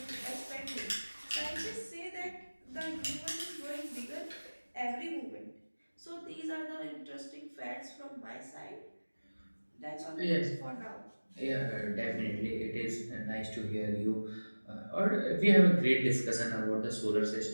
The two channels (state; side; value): inverted; both; correlation -1.00